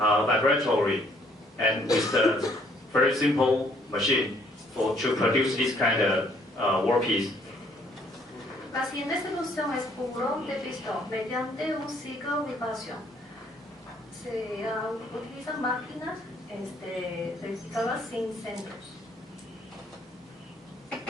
and with the very simple machine to produce this kind of workpiece. La siguiente solución es puro de pistón mediante un ciclo de vibración. Se utilizan máquinas rectificadoras sin centros.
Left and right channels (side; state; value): both; normal; correlation 0.64